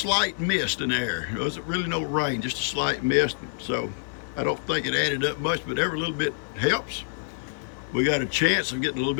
mist in the air. It wasn't really no rain, just a slight mist. So I don't think it added up much, but every little bit helps. We got a chance of getting a little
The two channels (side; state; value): right; silent; 57 dB below the other